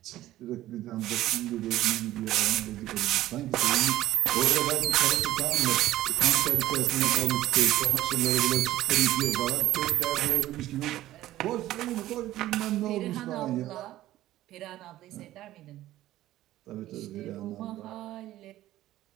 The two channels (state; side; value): quieter; left; 14.7 dB